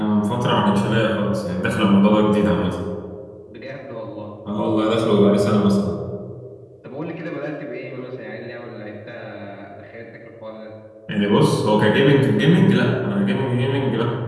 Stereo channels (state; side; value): identical; both; correlation 1.00